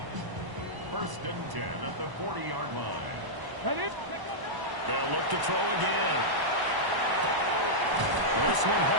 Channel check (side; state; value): left; late; 1.0 ms